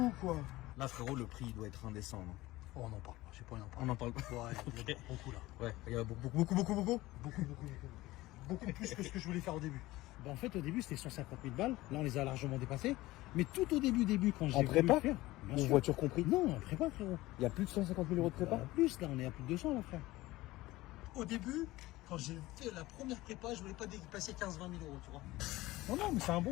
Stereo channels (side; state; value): right; quieter; 18.4 dB